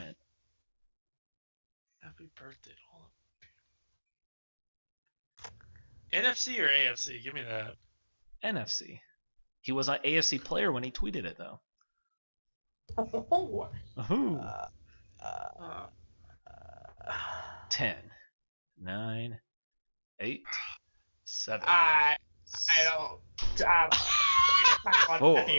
hint. Happy birthday to all of them. NFC or AFC? Give me that. NFC. He was an AFC player when he tweeted it, though. Oh. Ooh. 10, 9, 8, 7. I don't. Four,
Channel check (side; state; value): both; inverted; correlation -1.00